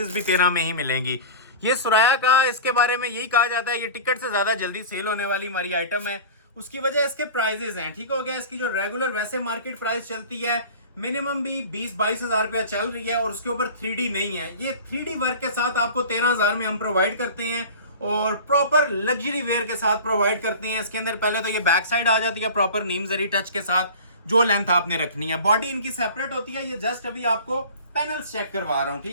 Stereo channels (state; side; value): inverted; both; correlation -0.37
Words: भी 13 में ही मिलेंगी। ये सुराया का, इसके बारे में यही कहा जाता है ये टिकट से ज्यादा जल्दी सेल होने वाली हमारी आइटम है। उसकी वजह इसके प्राइजेस हैं, ठीक हो गया। इसकी जो रेगुलर वैसे मार्केट प्राइस चलती है मिनिमम भी 20-22 हजार रुपया चल रही है, और उसके ऊपर 3D नहीं है। ये 3D वर्क के साथ आपको 13,000 में हम प्रोवाइड करते हैं और प्रॉपर लग्जरी वेयर के साथ प्रोवाइड करते हैं। इसके अंदर पहले तो ये बैक साइड आ जाती है प्रॉपर नीम जरी टच के साथ, जो लेंथ आपने रखनी है। बॉडी इनकी सेपरेट होती है, ये जस्ट अभी आपको पैनल्स चेक करवा रहा हूँ,